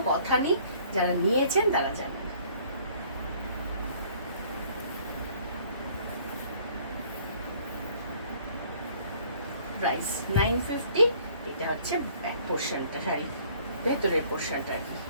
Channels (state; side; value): inverted; both; correlation -0.58